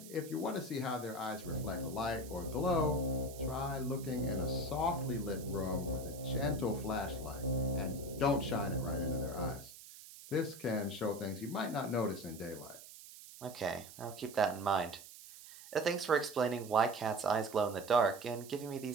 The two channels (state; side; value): noise; right; hiss, 16 dB below the sound